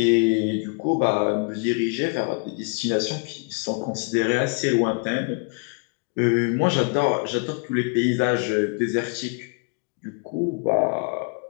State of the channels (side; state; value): right; quieter; 36.0 dB